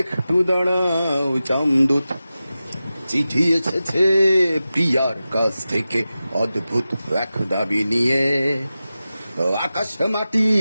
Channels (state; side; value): inverted; both; correlation -0.94